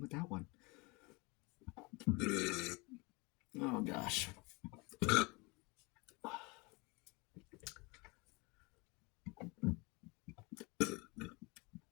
that one. Oh gosh.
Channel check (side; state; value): right; quieter; 27.3 dB